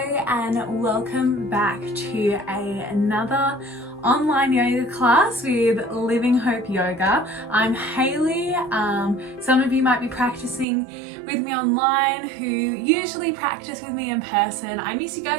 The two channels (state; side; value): drops out; left; at 10.7 s